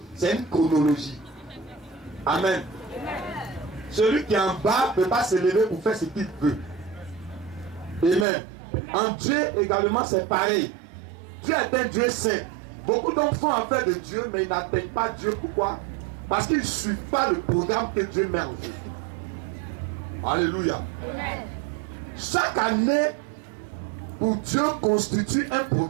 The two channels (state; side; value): drops out; left; at 8.2 s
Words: C'est une chronologie. Amen. Celui qui est en bas ne peut pas se lever pour faire ce qu'il veut. Amen. En Dieu également, c'est pareil. Dieu est un Dieu saint. Beaucoup d'hommes font affaire de Dieu, mais ils n'atteignent pas Dieu. Pourquoi? Parce qu'ils ne suivent pas le programme que Dieu met en jeu. Alléluia. Amen. Chaque année, pour Dieu, constitue un